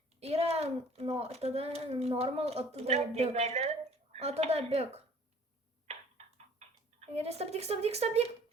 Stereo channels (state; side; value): normal; both; correlation 0.53